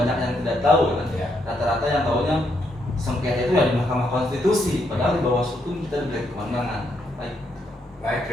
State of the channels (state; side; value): normal; both; correlation 0.76